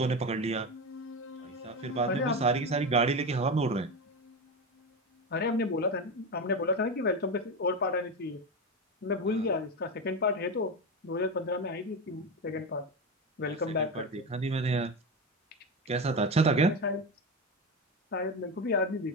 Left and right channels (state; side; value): normal; both; correlation 0.18